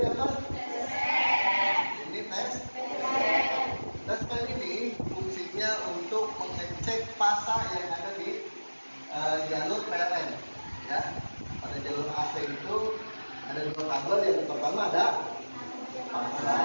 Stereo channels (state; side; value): inverted; both; correlation -1.00